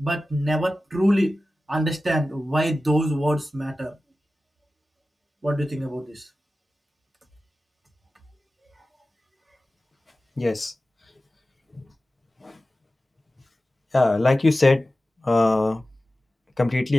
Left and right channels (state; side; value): normal; both; correlation 0.95